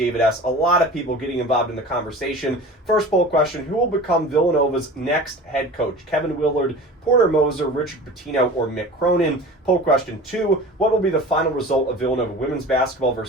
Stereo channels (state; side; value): normal; both; correlation 0.38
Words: S. A lot of people getting involved in the conversation. First poll question, who will become Villanova's next head coach? Kevin Willard, Porter Moser, Richard Pitino, or Mick Cronin? Poll question 2, what will be the final result of Villanova women's basketball